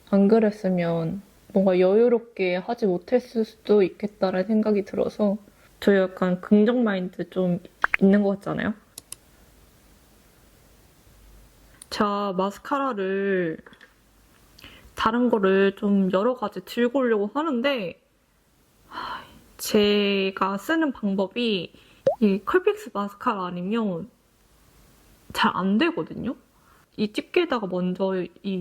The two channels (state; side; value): identical; both; correlation 1.00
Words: 안 그랬으면 뭔가 여유롭게 하지 못했을 수도 있겠다라는 생각이 들어서 저 약간 긍정 마인드 좀 있는 것 같잖아요. 제가 마스카라를 다른 거를 좀 여러 가지 들고 오려고 하는데 제가 쓰는 방법이 이 컬픽스 마스카라 아니면 잘 안 되거든요. 이 집게에다가 먼저